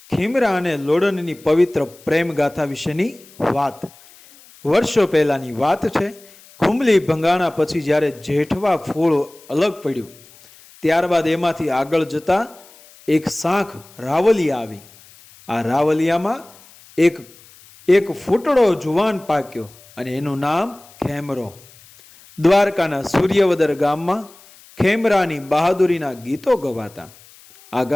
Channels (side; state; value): left; noise; hiss, 25 dB below the sound